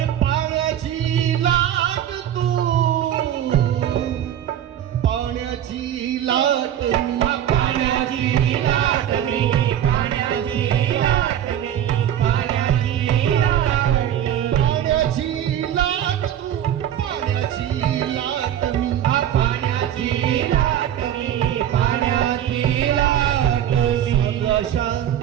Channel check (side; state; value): left; quieter; 10.7 dB